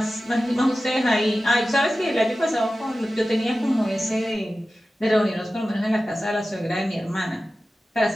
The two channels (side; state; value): both; normal; correlation 0.95